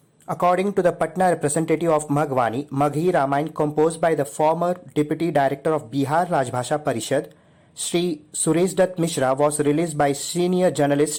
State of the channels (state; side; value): identical; both; correlation 1.00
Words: According to the Patna representative of Magwani, Maghi Ramayan composed by the former Deputy Director of Bihar Rajbhasha Parishad, Sri Suresh Dutt Mishra, was released by senior